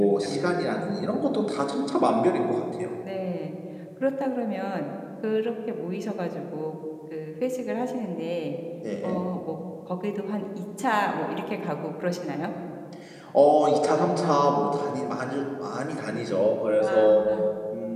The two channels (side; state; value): both; identical; correlation 1.00